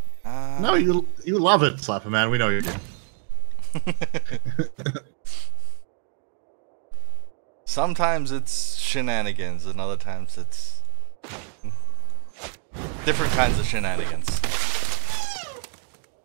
No, you love it, Slap a man. We know you do. Sometimes it's shenanigans, and other times it's different kinds of shenanigans.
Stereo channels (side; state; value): left; silent; 59 dB below the other